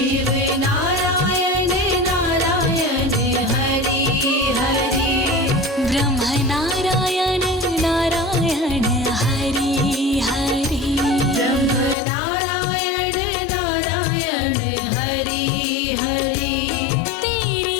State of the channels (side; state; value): right; drops out; at 12.0 s